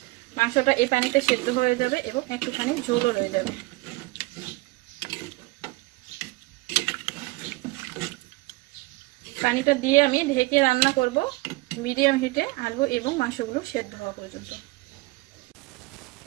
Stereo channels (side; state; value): left; quieter; 22.6 dB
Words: মাংসটা এই পানিতে সেদ্ধ হয়ে যাবে এবং একটুখানি ঝোলও রয়ে যাবে। পানিটা দিয়ে আমি ঢেকে রান্না করব মিডিয়াম হিটে, আলু এবং মাংসগুলো সেদ্ধ হওয়া পর্যন্ত।